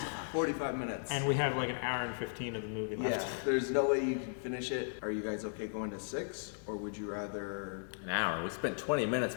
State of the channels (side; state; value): right; silent; digital silence